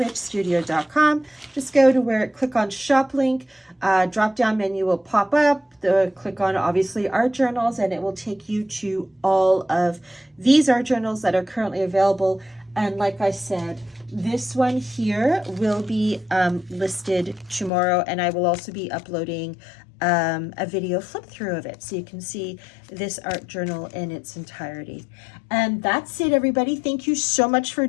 Just go to where, click on shop link, drop down menu will pop up. Click on obviously art journals, and it will take you to all of these art journals that are currently available. And like I said, this one here will be listed tomorrow, and I will also be uploading a video flip through of it, so you can see this art journal in its entirety. And that's it, everybody. Thank you so much for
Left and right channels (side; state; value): right; drops out; at 17.7 s